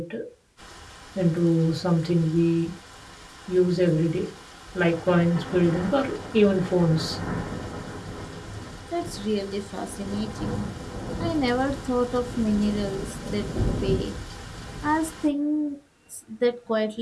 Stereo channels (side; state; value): both; identical; correlation 1.00